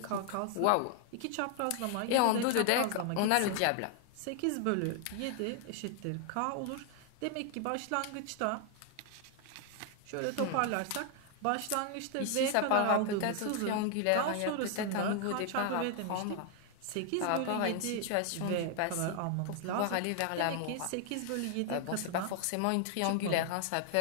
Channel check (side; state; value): both; different; correlation 0.00